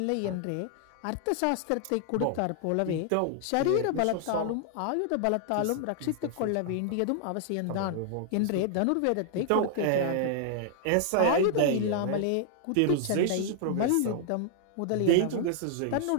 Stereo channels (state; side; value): different; both; correlation -0.01